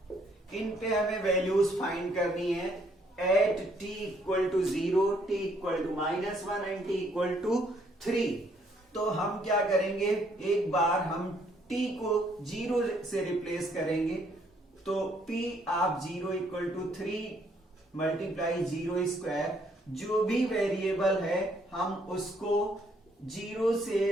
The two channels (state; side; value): normal; both; correlation 0.68